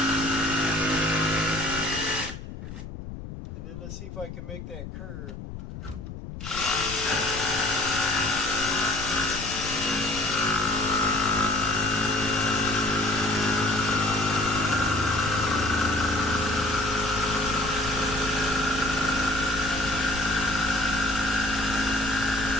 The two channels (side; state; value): left; noise; rumble, 10 dB below the sound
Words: Let's see if I can make that curve.